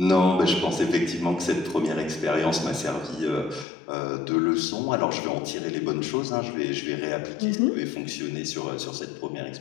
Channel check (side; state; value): right; drops out; at 3.7 s